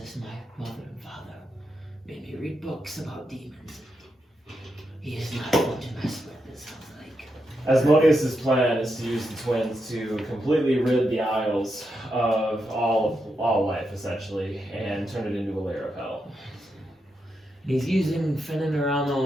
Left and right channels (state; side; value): normal; both; correlation 0.84